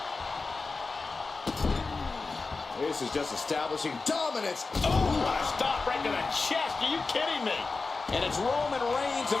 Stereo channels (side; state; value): right; quieter; 4.0 dB